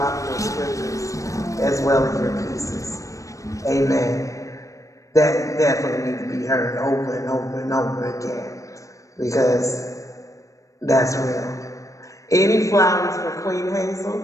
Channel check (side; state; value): right; late; 0.16 ms